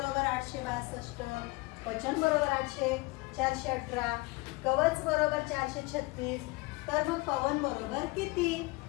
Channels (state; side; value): quieter; right; 24.3 dB